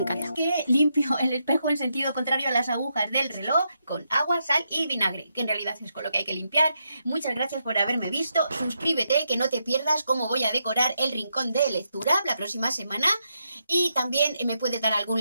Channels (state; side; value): inverted; both; correlation -0.82